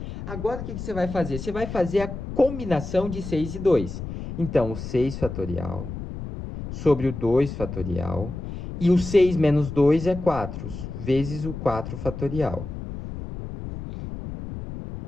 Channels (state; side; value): noise; left; rumble, 8 dB below the sound